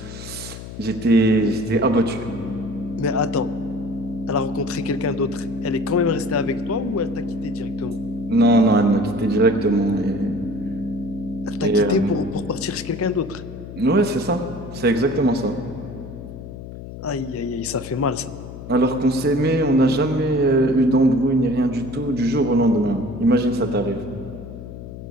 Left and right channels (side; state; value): left; noise; hum, 12 dB below the sound